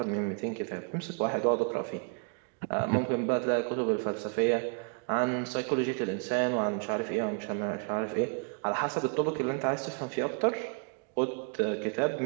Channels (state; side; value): quieter; left; 38.2 dB